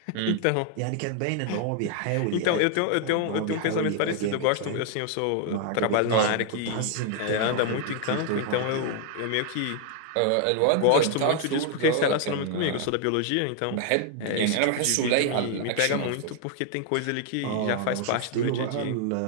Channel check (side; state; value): both; different; correlation 0.00